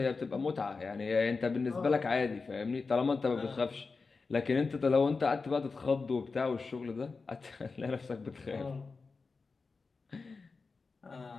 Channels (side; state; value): right; quieter; 4.4 dB